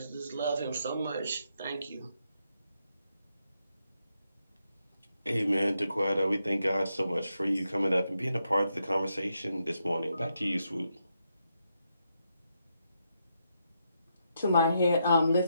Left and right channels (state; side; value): inverted; both; correlation -0.82